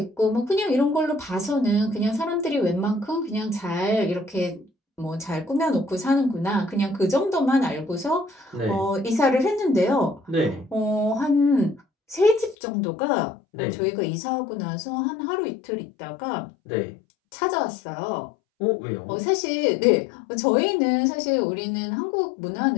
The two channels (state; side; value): drops out; right; at 12.6 s